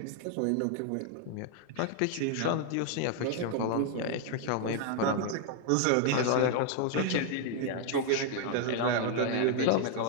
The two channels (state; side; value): different; both; correlation 0.00